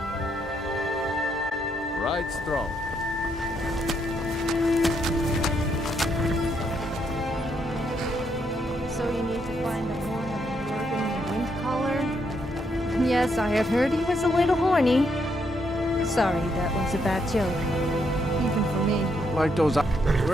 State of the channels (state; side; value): normal; both; correlation 0.76